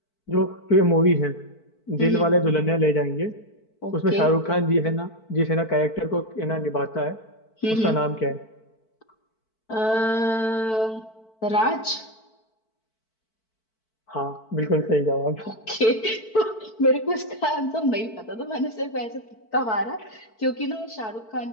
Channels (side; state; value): right; late; 4.5 ms